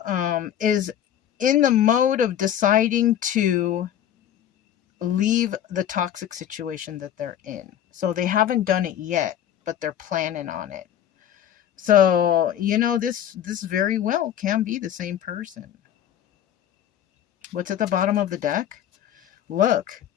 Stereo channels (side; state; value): right; quieter; 10.4 dB